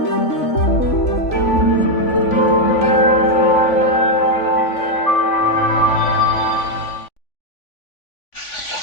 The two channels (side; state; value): right; late; 3.5 ms